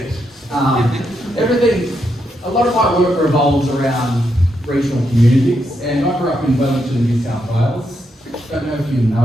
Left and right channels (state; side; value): normal; both; correlation 0.81